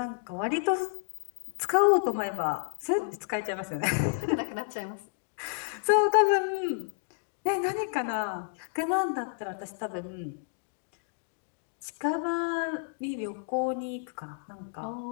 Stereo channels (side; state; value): right; silent; digital silence